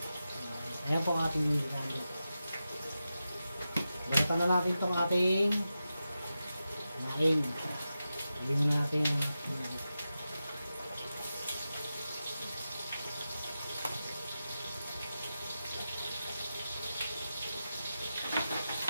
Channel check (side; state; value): both; inverted; correlation -0.91